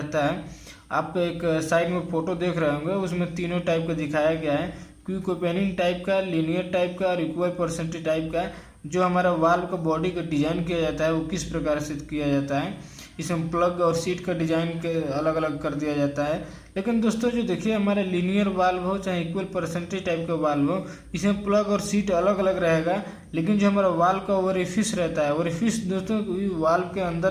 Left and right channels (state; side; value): identical; both; correlation 1.00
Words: है। आप एक साइड में फोटो देख रहे होंगे उसमें तीनों टाइप का दिखाया गया है, क्विक ओपनिंग टाइप का, लीनियर टाइप का और इक्वल परसेंटेज टाइप का। जो हमारा वाल्व का बॉडी का डिजाइन किया जाता है वो किस प्रकार से किया जाता है, इसमें प्लग और सीट का डिजाइन के अलग अलग कर दिया जाता है। लेकिन दोस्तों जो देखिए हमारा लीनियर वाल्व हो चाहे इक्वल परसेंटेज टाइप का वाल्व हो, इसमें प्लग और सीट अलग अलग रहेगा। लेकिन जो हमारा वाल्व का ओरिफिस रहता है, ओरिफिस दोस्तों वाल्व के